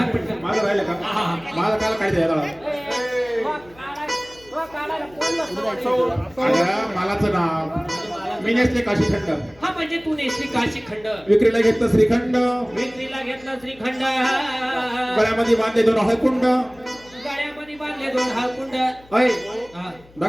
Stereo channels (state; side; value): noise; left; hum, 26 dB below the sound